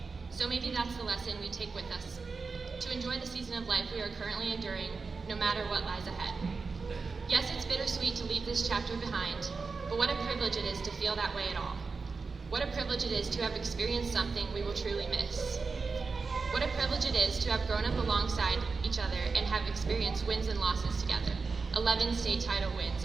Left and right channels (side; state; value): left; quieter; 4.5 dB